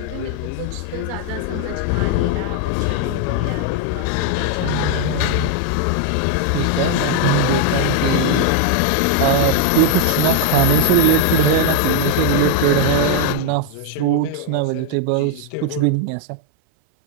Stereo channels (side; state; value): both; different; correlation 0.00